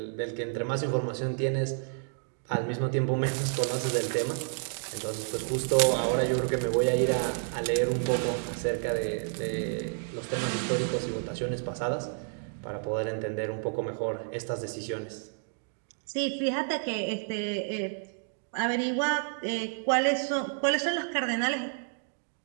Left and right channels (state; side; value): silent; left; 58 dB below the other